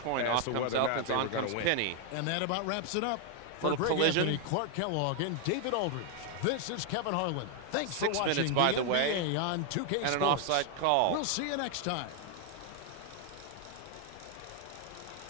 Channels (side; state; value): both; different; correlation 0.00